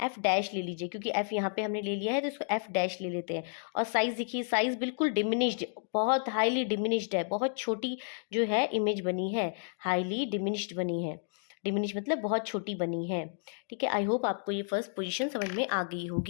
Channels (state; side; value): silent; right; digital silence